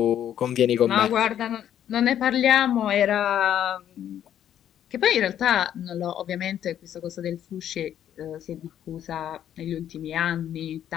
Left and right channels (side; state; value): right; quieter; 10.4 dB